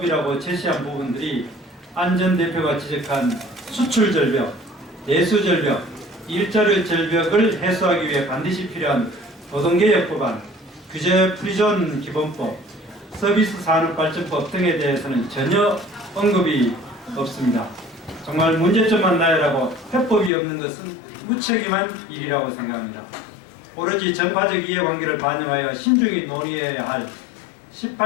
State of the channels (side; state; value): right; drops out; at 20.3 s